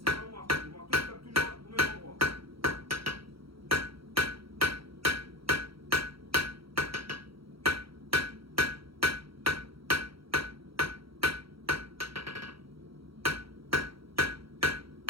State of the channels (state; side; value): late; left; 0.75 ms